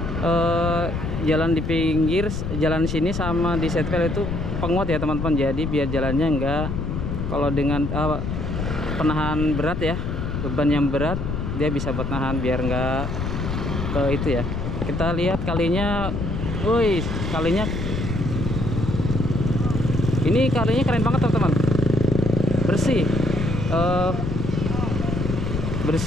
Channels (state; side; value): noise; left; rumble, 3 dB below the sound